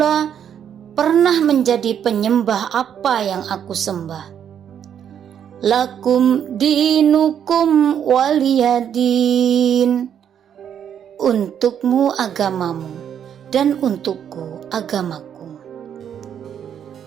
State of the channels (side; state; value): left; quieter; 8.9 dB